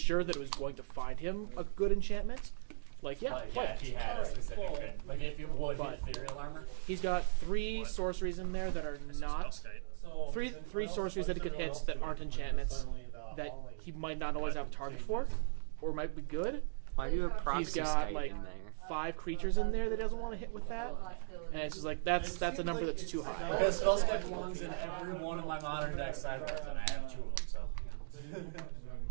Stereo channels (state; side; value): silent; left; digital silence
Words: that it was going to find him a good enchantment, like, yeah, Like, play yeah, it. if he had a specific good, like if it would hit ethereal armor. He's got 3 sorceries in there that are not... Three sorceries that he could hit that aren't enchantments that he might not always have a target for, or might be good. Why do you have He's Proxy got Skate like in there? 5 creatures in there that he doesn't want to hit with that, and it's just like that's a number that's too high. Because Spellskite belongs in every one of my modern deck sideboards, and I have 2 of them, so.